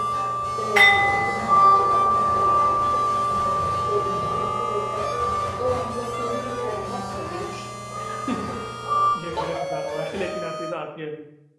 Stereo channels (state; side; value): identical; both; correlation 1.00